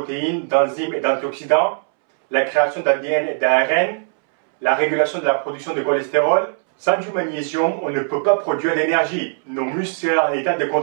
d'enzymes et d'antioxydants, la création d'ADN et d'ARN, la régulation de la production de cholestérol. Sans du magnésium, on ne peut pas produire d'énergie. Nos muscles seraient en état de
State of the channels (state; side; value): silent; left; 66 dB below the other